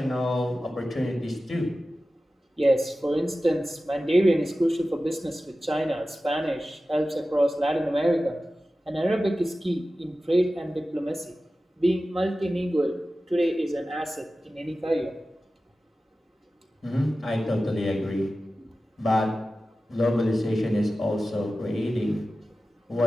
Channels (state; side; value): normal; both; correlation 0.95